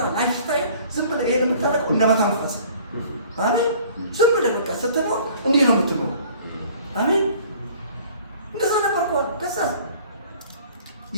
ላይፍ ስታይል ዝም ብለህ ይሄን የምታደርገው እንደመተንፈስ አሜን። ዝም ብለህ በቃ ስትኖር እንዲህ ነው የምትኖር አሜን። እንደዛ ነበርኳት። ከዛ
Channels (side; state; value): both; inverted; correlation -0.51